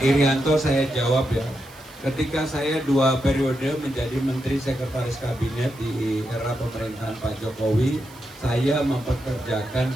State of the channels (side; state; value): right; noise; hiss, 24 dB below the sound